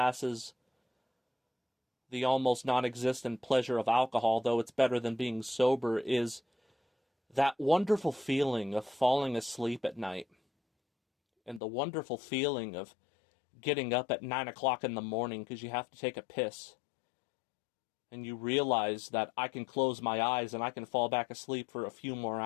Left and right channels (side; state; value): right; drops out; at 11.6 s